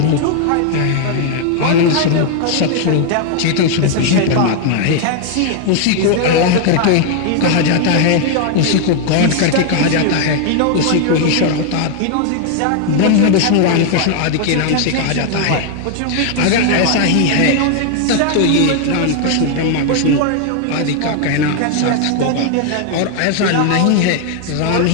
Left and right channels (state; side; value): different; both; correlation 0.00